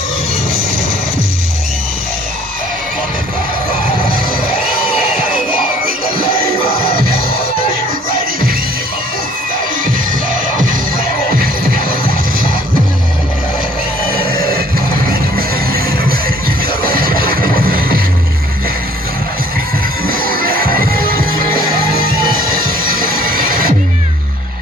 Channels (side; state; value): both; normal; correlation 0.57